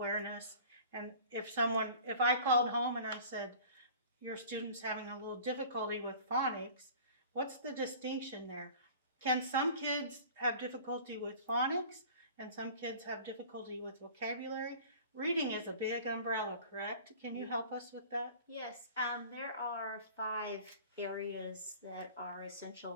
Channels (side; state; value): both; inverted; correlation -0.44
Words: And if I called home and I said, your student's having a little difficulty with phonics, what's the distinction there? Can some kids have difficulty with phonics and some kids have difficulty with vocabulary? Reading is a big umbrella, correct? Can you help us with that? Yes, there are 5 areas that are